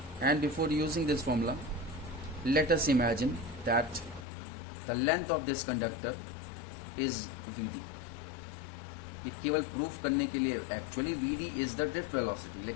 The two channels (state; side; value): drops out; right; at 4.2 s